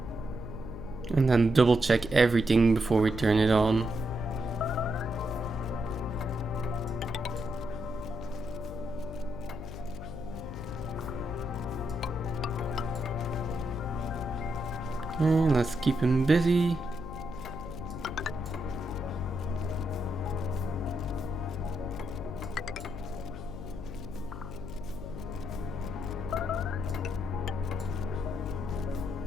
And then double check everything before we turn it on. And let's keep him busy.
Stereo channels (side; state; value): left; noise; hum, 9 dB below the sound